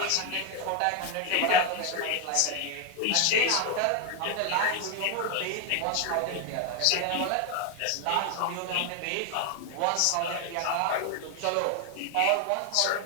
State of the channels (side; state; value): both; different; correlation 0.01